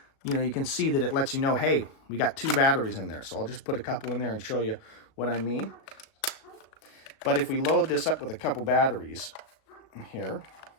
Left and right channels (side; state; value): right; late; 36 ms